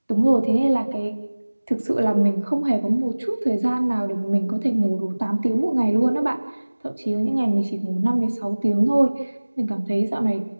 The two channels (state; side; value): inverted; both; correlation -1.00